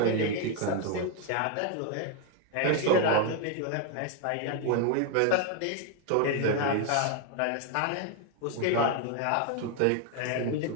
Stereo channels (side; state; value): both; different; correlation 0.01